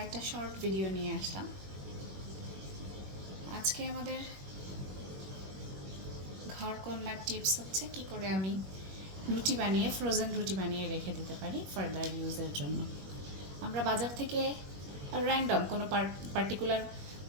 শর্ট ভিডিও নিয়ে আসলাম। আজকে আমাদের ঘর কন্যার টিপস হচ্ছে কি করে আমি রুটি বানিয়ে ফ্রোজেন রুটি বানিয়ে রেখে দিতে পারি ফার্দার ইউজের জন্য। আমরা বাজার থেকে র্যান্ডম কোনো পার্টিকুলার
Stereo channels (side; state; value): left; late; 21 ms